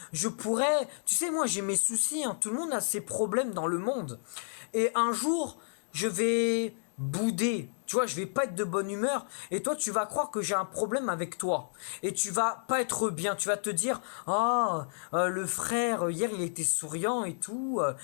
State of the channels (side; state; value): right; silent; digital silence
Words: je pourrais... Tu sais, moi, j'ai mes soucis, hein, tout le monde a ses problèmes dans le monde. Et un jour, je vais bouder, tu vois, je vais pas être de bonne humeur, et toi, tu vas croire que j'ai un problème avec toi. Et tu vas pas être bien, tu vas te dire, ah, le frère, hier, il était souriant et tout,